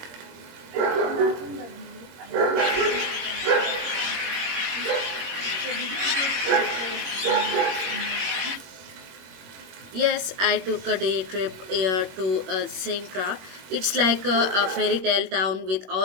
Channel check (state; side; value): late; left; 21 ms